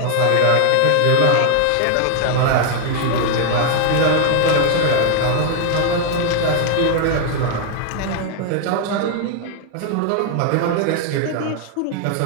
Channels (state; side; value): different; both; correlation 0.00